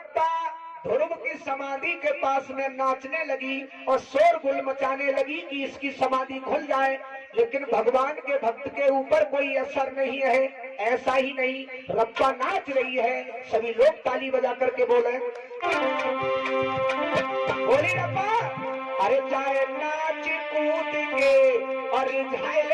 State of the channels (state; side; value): identical; both; correlation 1.00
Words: ध्रुव की समाधि के पास में नाचने लगी और शोरगुल मचाने लगी कि इसकी समाधि खुल जाए, लेकिन भगवान के भक्त के ऊपर कोई असर नहीं है। ऐसा ही नहीं, रब्बा नाच रही है, सभी लोग ताली बजा करके बोले बोली रब्बा। अरे चाहे नाच कूद के और